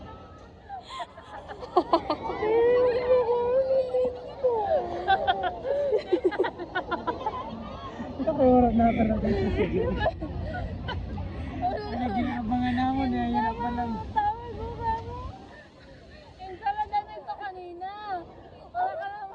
Oras na talaga. Ano ginaabangan naman eh, yan pa lang. Tawag mo ba mo? Yung sama na nito kanina. Wala ka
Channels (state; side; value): identical; both; correlation 1.00